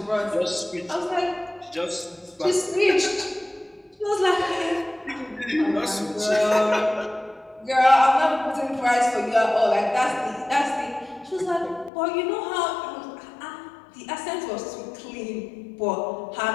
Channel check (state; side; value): drops out; right; at 11.9 s